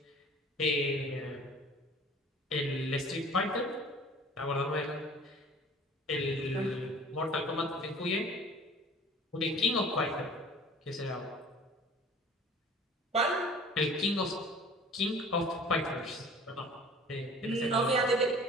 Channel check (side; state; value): both; normal; correlation 0.47